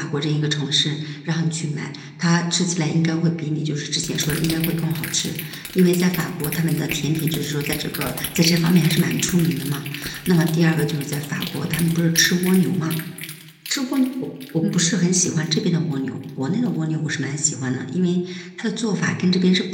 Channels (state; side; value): identical; both; correlation 1.00